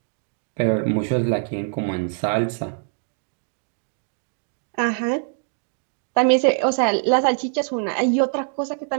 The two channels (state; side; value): silent; left; 63 dB below the other